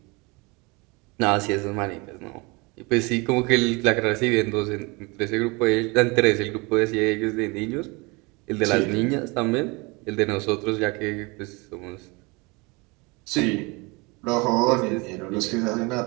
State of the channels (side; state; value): left; quieter; 26.9 dB